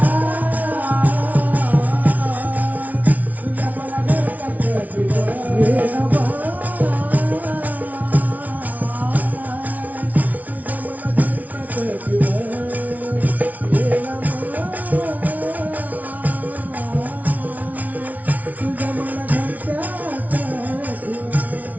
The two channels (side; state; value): left; late; 0.073 ms